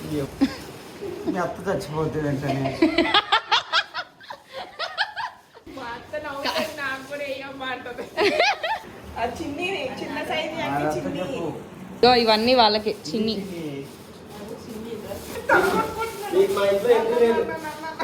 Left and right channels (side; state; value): both; identical; correlation 1.00